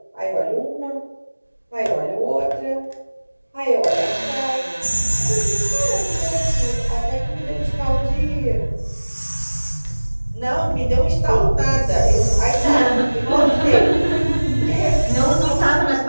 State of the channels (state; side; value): inverted; both; correlation -1.00